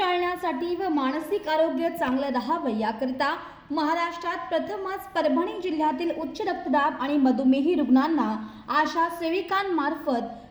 व मानसिक आरोग्य चांगलं राहावं याकरिता महाराष्ट्रात प्रथमच परभणी जिल्ह्यातील उच्च रक्तदाब आणि मधुमेही रुग्णांना आशा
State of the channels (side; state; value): both; identical; correlation 1.00